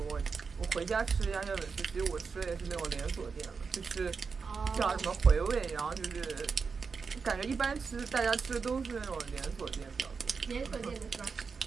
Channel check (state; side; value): quieter; left; 5.2 dB